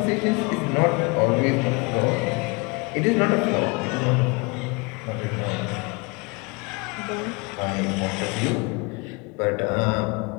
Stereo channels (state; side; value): quieter; right; 29.0 dB